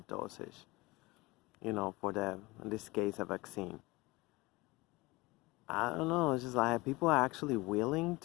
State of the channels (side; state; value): right; quieter; 22.5 dB